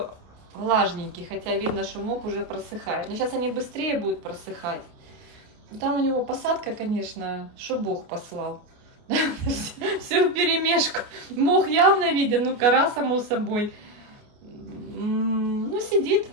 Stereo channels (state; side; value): late; left; 29 ms